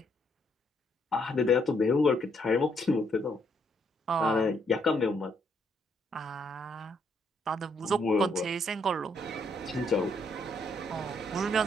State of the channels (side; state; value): both; normal; correlation 0.72